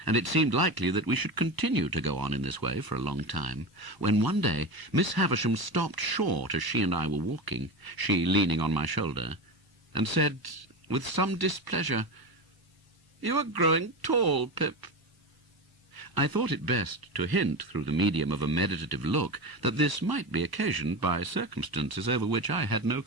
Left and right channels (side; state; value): left; late; 1.0 ms